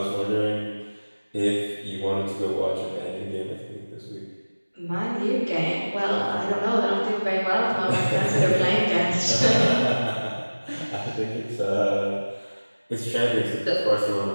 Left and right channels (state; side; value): inverted; both; correlation -1.00